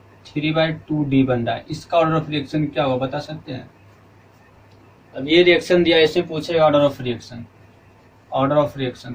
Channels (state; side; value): identical; both; correlation 1.00